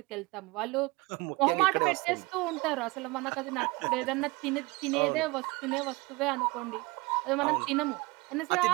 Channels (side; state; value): left; quieter; 24.2 dB